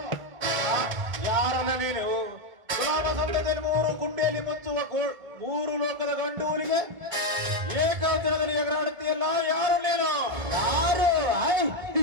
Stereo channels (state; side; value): late; left; 1.4 ms